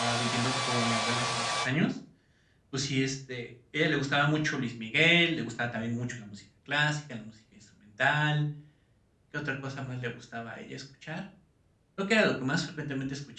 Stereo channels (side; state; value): both; identical; correlation 1.00